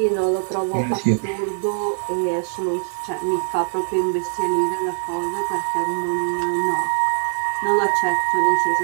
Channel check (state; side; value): silent; left; digital silence